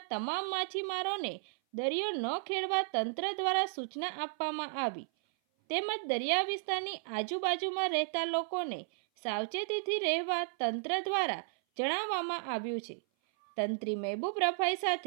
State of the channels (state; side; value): silent; left; 55 dB below the other